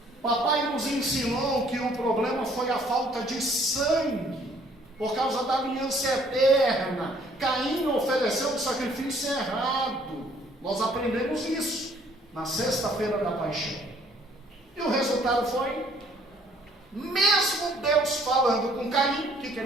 Papai nos ensinou que o problema foi a falta de sangue, por causa da aliança eterna. Caim ofereceu um sacrifício errado. Nós aprendemos isso na sexta-feira da paixão. E o resultado foi, mesmo Deus falando com Caim, o que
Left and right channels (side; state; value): both; normal; correlation 0.61